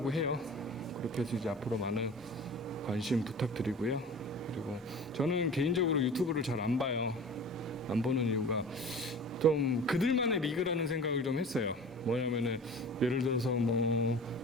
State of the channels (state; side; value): normal; both; correlation 0.39